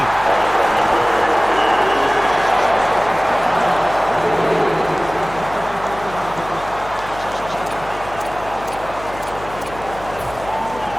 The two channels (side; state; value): left; noise; hum, 16 dB below the sound